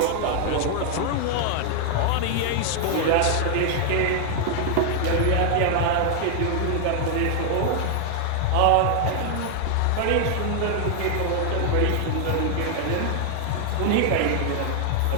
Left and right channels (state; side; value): different; both; correlation 0.00